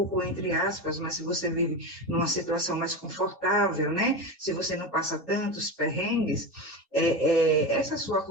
entre aspas, mas se você vive numa situação mais confortável, né? Se você não passa tantos perrengues, essa sua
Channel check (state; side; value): normal; both; correlation 0.21